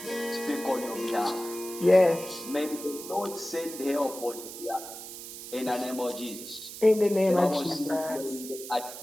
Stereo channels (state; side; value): noise; right; hiss, 11 dB below the sound